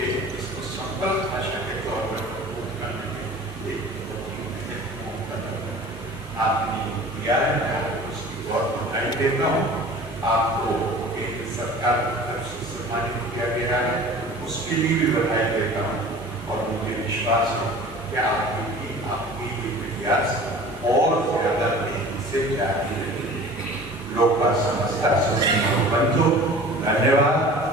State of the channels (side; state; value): both; normal; correlation 0.42